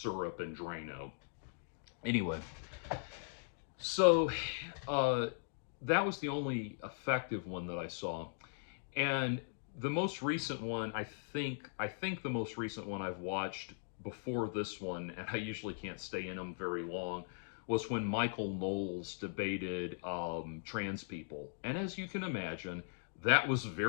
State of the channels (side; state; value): right; silent; digital silence